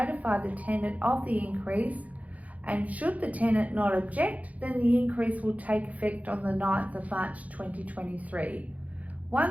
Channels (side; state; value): left; late; 0.071 ms